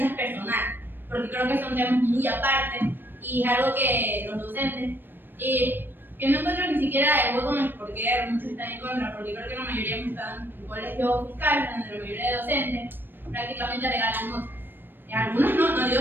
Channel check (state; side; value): late; left; 0.095 ms